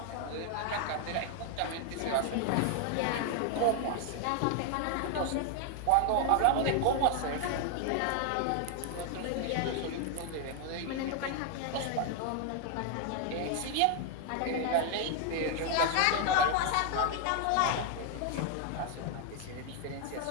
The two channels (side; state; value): both; different; correlation 0.00